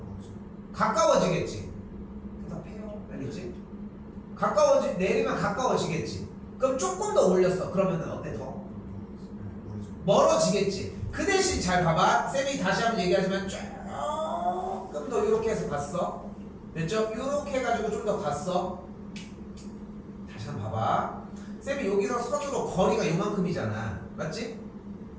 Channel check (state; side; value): identical; both; correlation 1.00